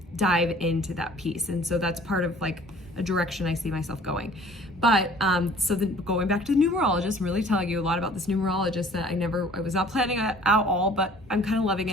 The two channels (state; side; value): normal; both; correlation 0.51